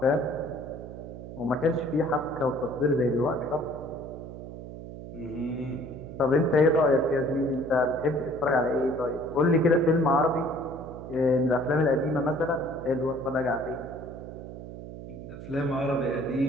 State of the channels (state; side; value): noise; right; hum, 11 dB below the sound